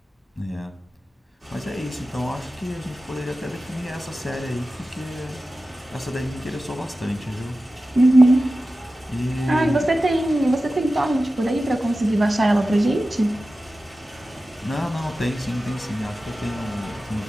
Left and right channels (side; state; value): both; normal; correlation 0.95